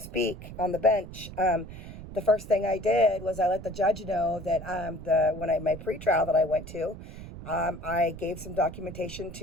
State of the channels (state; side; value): noise; right; rumble, 13 dB below the sound